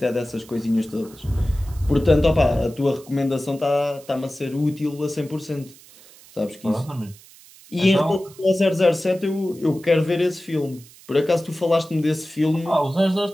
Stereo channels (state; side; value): noise; right; hiss, 23 dB below the sound